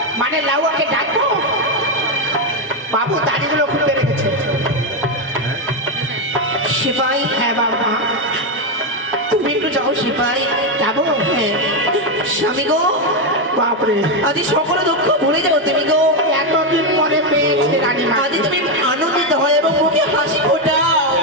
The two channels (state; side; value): normal; both; correlation 0.06